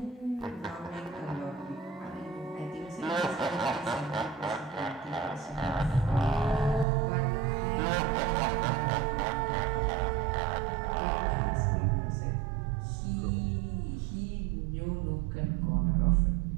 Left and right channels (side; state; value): left; drops out; at 6.9 s